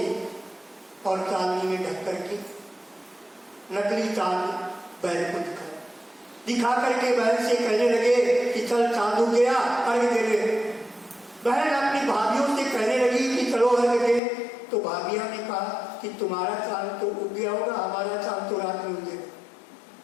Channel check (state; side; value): drops out; right; at 14.2 s